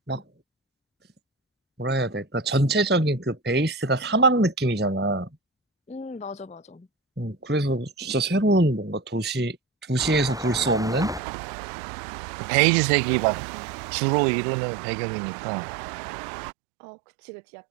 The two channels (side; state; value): left; drops out; at 11.2 s